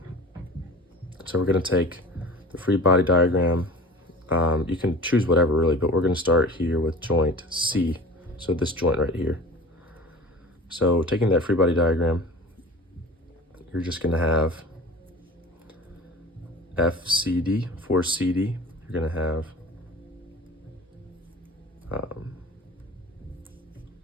So we're gonna take the free body diagram. You can choose whatever really, but we're gonna start here with joint C. So this joint right here. So taking that free body diagram, you're just gonna have FCD, for CD, you're gonna have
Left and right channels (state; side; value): normal; both; correlation 0.39